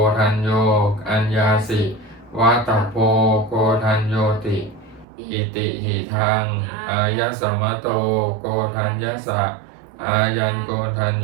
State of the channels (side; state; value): left; drops out; at 5.1 s